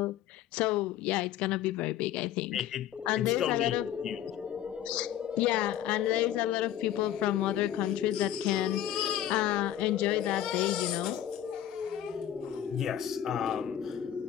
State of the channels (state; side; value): quieter; right; 11.4 dB